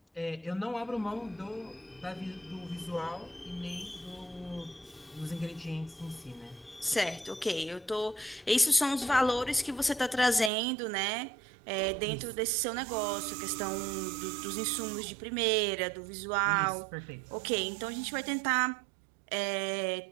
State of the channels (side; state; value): left; drops out; at 10.5 s